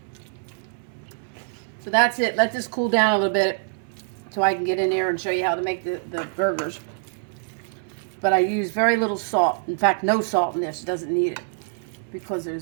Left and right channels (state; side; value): silent; left; 62 dB below the other